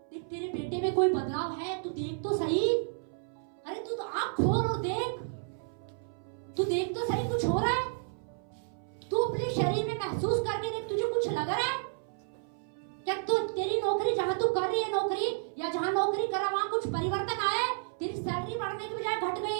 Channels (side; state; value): left; silent; 57 dB below the other